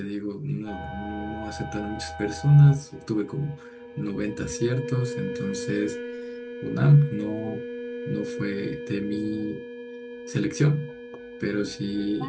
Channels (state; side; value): identical; both; correlation 1.00